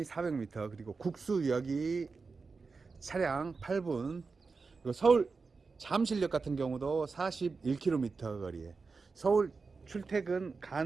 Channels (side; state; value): left; quieter; 4.5 dB